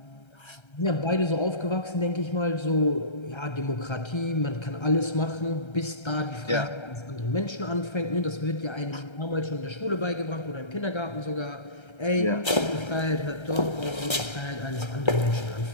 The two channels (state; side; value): late; right; 1.3 ms